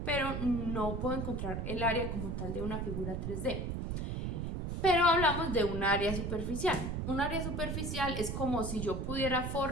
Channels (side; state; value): right; noise; rumble, 3 dB below the sound